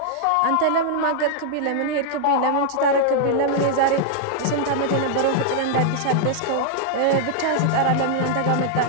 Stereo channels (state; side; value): different; both; correlation -0.01